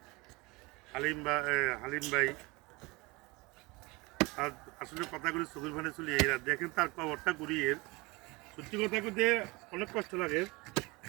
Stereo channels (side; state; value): left; quieter; 24.6 dB